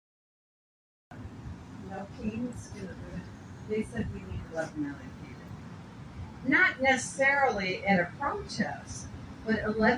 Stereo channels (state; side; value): identical; both; correlation 1.00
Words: No kings. They said we need 11 million people. Not necessarily at a protest, but